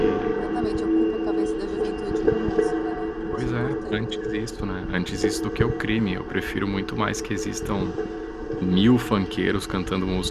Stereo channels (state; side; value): identical; both; correlation 1.00